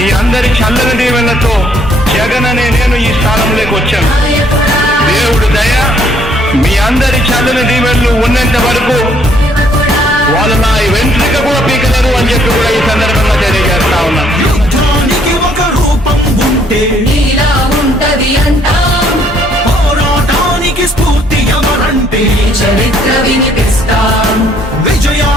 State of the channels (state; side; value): normal; both; correlation 0.65